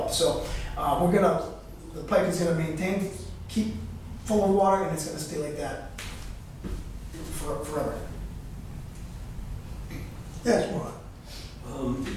So the pipe is gonna keep full of water, and it's gonna stay like that forever. Yes, Ron?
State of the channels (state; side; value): identical; both; correlation 1.00